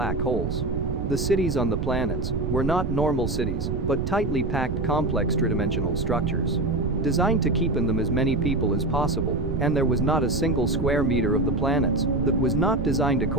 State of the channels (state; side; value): noise; right; rumble, 1 dB below the sound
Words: holes. The cities on the planets were not normal cities, but tightly packed complex tridimensional structures. Designed to keep in them as many people as possible, and there was not a single square meter of the planets that was not designed